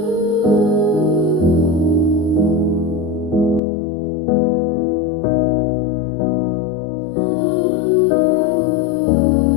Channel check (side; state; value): right; drops out; at 3.6 s